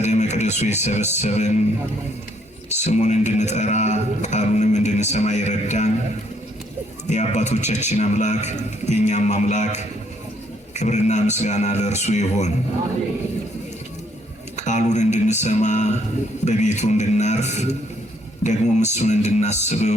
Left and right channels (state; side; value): normal; both; correlation 0.68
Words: መቅደሱ የሰበሰበን ስሙን እንድንጠራ ቃሉንም እንድንሰማ ይረዳን የአባቶቻችን አምላክ የእኛም አምላክ ክብርና ምስጋና ለእርሱ ይሁን። ቃሉን እንድንሰማ በቤቱ እንድናርፍ ደግሞም እሱን